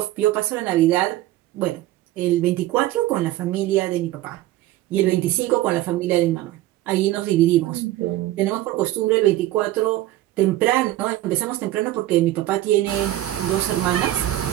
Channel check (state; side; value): quieter; left; 15.0 dB